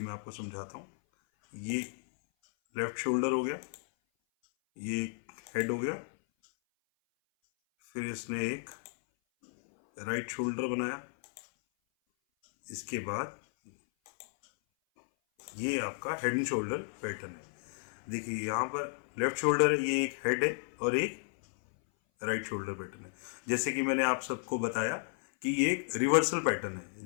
मैं आपको समझाता हूँ। ये लेफ्ट शोल्डर हो गया, ये एक हेड हो गया, फिर इसने एक राइट शोल्डर बनाया। इसके बाद ये आपका हेड एंड शोल्डर पैटर्न है। देखिए यहाँ पर लेफ्ट शोल्डर है, ये एक हेड है और एक राइट शोल्डर पैटर्न है। जैसे कि मैंने आप सबको बताया कि ये एक रिवर्सल पैटर्न है।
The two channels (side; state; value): right; silent; 56 dB below the other